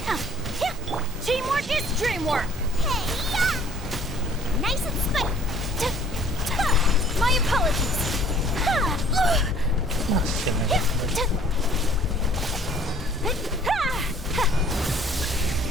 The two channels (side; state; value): both; normal; correlation 0.55